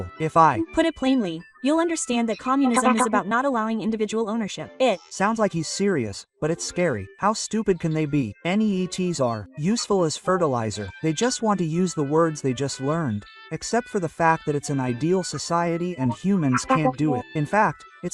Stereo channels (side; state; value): both; identical; correlation 1.00